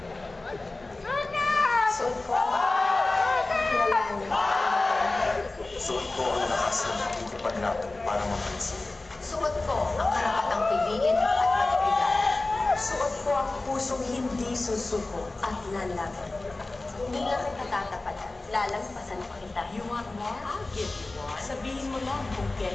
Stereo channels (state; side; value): quieter; right; 3.1 dB